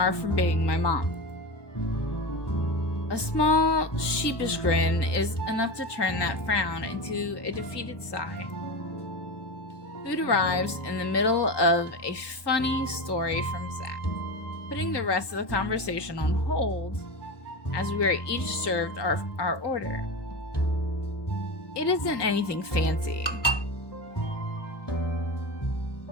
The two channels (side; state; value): right; late; 1.2 ms